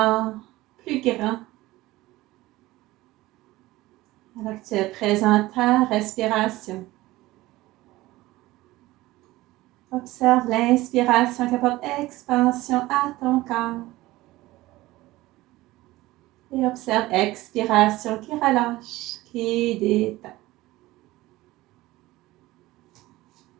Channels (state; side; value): quieter; left; 18.1 dB